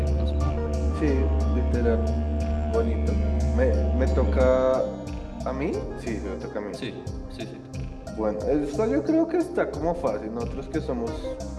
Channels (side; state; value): both; identical; correlation 1.00